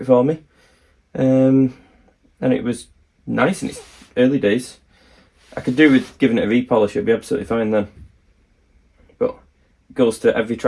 for me, and it was nice in its early days. I could do with giving it a repolish, it'd be absolutely fine then. But it goes to every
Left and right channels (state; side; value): identical; both; correlation 1.00